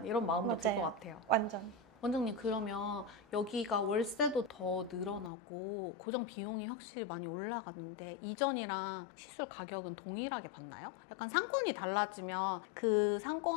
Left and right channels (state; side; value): drops out; right; at 5.3 s